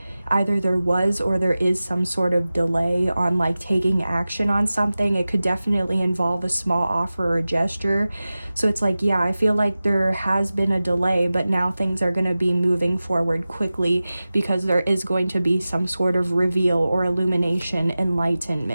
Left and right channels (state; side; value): inverted; both; correlation -0.96